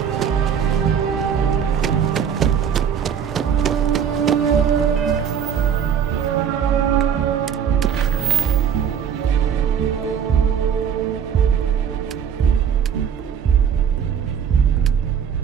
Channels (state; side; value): quieter; left; 8.0 dB